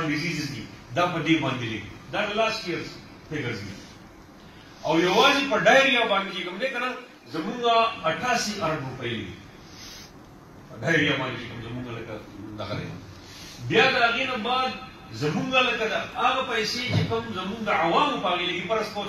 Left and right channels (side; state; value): both; identical; correlation 1.00